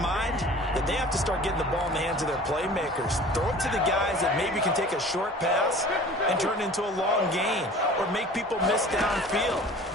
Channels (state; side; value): normal; both; correlation 0.44